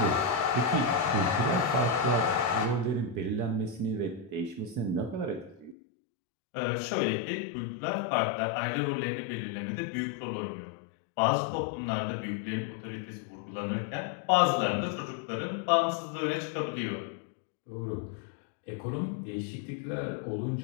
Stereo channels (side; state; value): right; drops out; at 5.8 s